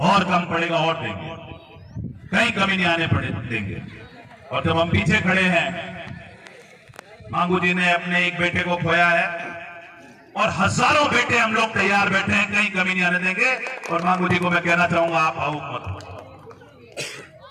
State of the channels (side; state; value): both; identical; correlation 1.00